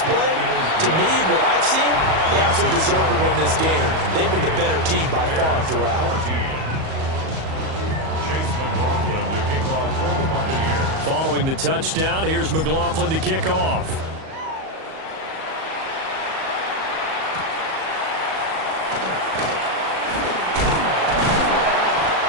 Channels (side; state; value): left; late; 38 ms